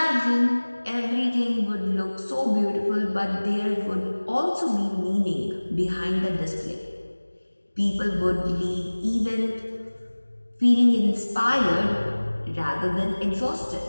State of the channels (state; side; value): inverted; both; correlation -1.00